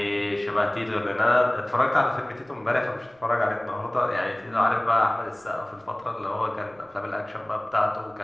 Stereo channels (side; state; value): right; noise; rumble, 30 dB below the sound